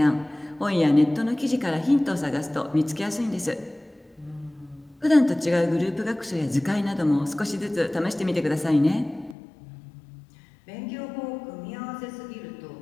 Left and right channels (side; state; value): right; drops out; at 9.3 s